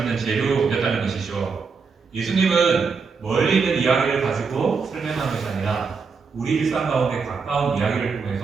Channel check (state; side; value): quieter; left; 5.2 dB